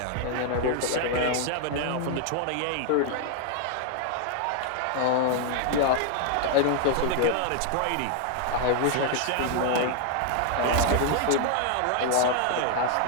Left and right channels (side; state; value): both; different; correlation 0.00